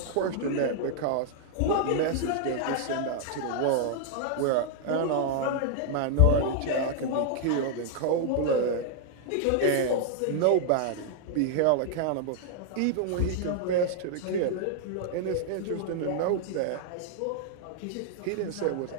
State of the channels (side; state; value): both; different; correlation 0.00